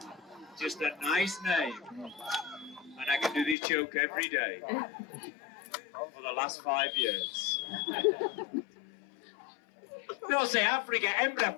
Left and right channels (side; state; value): right; drops out; at 3.6 s